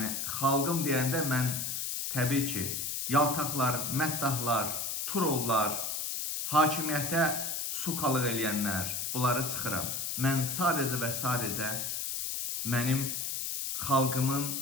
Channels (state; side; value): noise; left; hiss, 2 dB below the sound